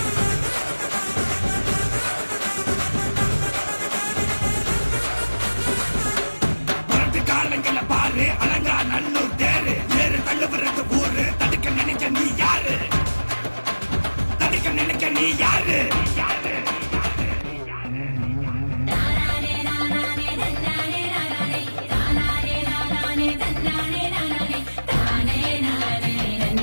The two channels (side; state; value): both; inverted; correlation -1.00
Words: காலங்கள பாரு அலங்கா நல்லூர் தேரு ஏறு தள்ளுபுறது ஊரு தடுக்க நினைக்க நீ யாரு தடுக்க நினைக்க நீ யாரு